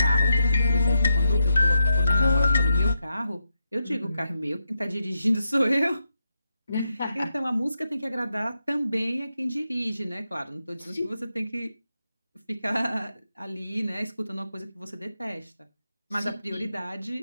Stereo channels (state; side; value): inverted; both; correlation -0.85